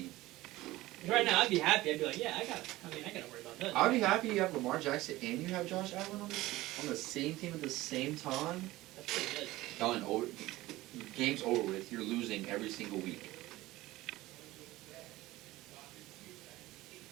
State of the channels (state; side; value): quieter; left; 17.9 dB